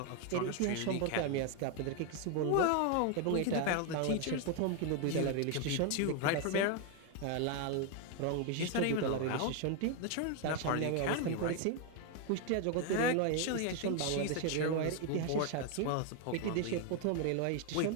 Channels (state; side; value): different; both; correlation 0.01